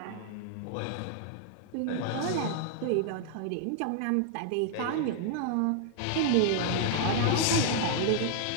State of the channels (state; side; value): different; both; correlation -0.01